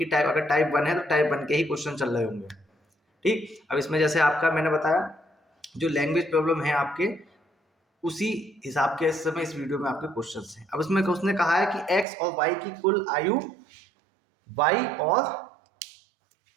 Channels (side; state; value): left; drops out; at 12.1 s